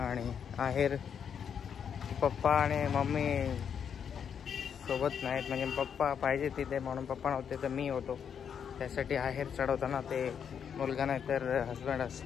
आणि आहेर पप्पा आणि मम्मी सोबत नाहीत. म्हणजे पप्पा पाहिजे तिथे म्हणून पप्पा नव्हते तर मी होतो. त्यासाठी आहेर चढवताना ते मुलगा नाही तर हस्बंड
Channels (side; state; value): right; quieter; 7.7 dB